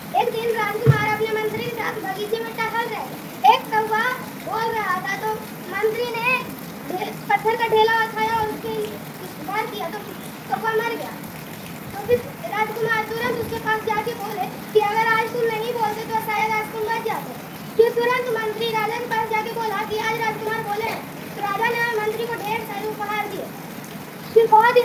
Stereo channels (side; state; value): both; identical; correlation 1.00